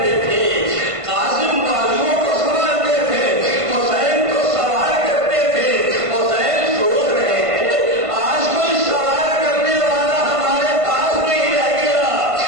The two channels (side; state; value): left; late; 1.5 ms